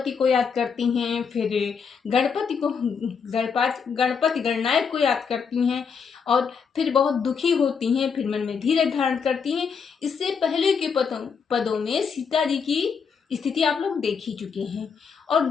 को याद करती हैं, फिर गणपति गणनायक को याद करती हैं और फिर बहुत दुखी होती हैं, फिर मन में धीरज धारण करती हैं। इससे पहले के पदों में सीता जी की स्थिति आप लोग देख ही चुके हैं। और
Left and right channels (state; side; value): quieter; right; 6.1 dB